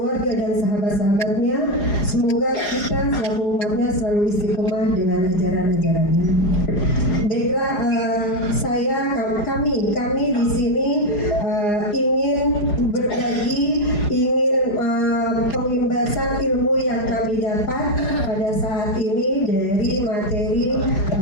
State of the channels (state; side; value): late; right; 4.9 ms